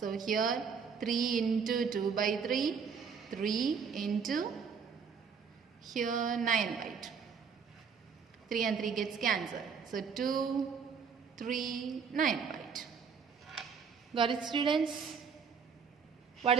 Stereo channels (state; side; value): quieter; left; 6.2 dB